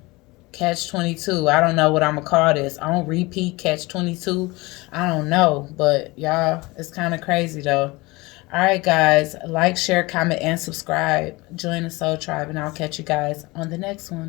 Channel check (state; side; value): quieter; right; 22.9 dB